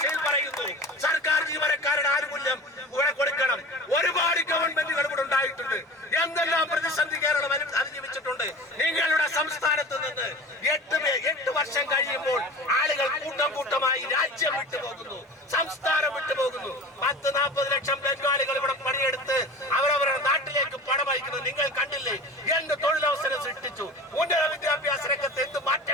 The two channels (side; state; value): both; normal; correlation 0.36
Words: പറയുന്നു. സർക്കാർ ജീവനക്കാരുടെ ആനുകൂല്യം ഇവിടെ കൊടുക്കണം. ഒരുപാട് ഗവൺമെന്റുകൾ ഇവിടെ ഉണ്ടായിട്ടുണ്ട്. എന്തെല്ലാം പ്രതിസന്ധി കേരളം അതിജീവിച്ചിട്ടുണ്ട്. നിങ്ങളുടെ സംസ്ഥാനത്ത് നിന്ന് 8 വർഷം കഴിയുമ്പോൾ ആളുകൾ കൂട്ടമായി രാജ്യം വിട്ടുപോകുന്നു, സംസ്ഥാനം വിട്ടുപോകുന്നു. 10-40 ലക്ഷം ബംഗാളികൾ ഇവിടെ പണിയെടുത്ത് അവരവരുടെ നാട്ടിലേക്ക് പണം അയക്കുന്നത് നിങ്ങൾ കണ്ടില്ലേ? എന്ത് തൊഴിലവസരം സൃഷ്ടിച്ചു. ഉന്നത വിദ്യാഭ്യാസ രംഗത്ത് എന്ത്